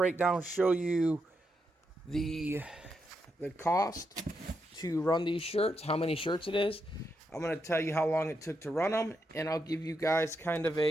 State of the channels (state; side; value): normal; both; correlation 0.83